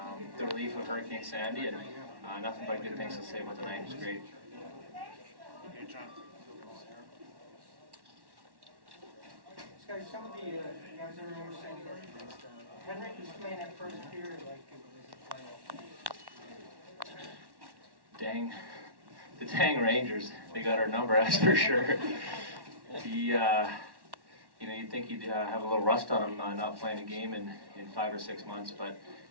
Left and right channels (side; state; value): left; late; 1.1 ms